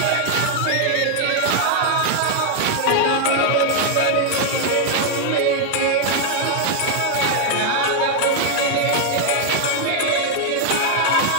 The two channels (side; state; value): both; different; correlation 0.00